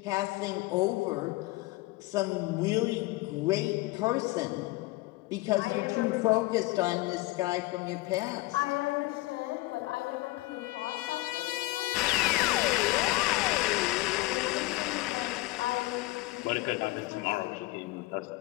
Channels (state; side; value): quieter; right; 20.6 dB